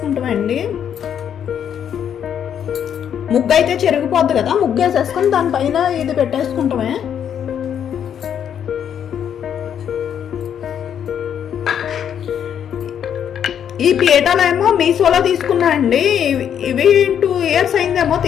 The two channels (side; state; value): right; quieter; 8.9 dB